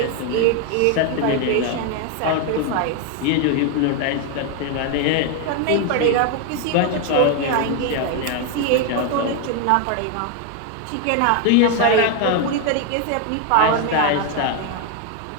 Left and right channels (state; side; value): different; both; correlation 0.01